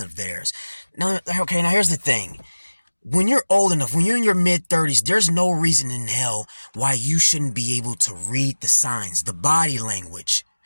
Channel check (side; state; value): both; inverted; correlation -1.00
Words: of theirs. Now, okay, now here's the thing. When you're old enough, when you're in your mid-30s, there's no reason in hell why you shouldn't be able to read the signs, the body language.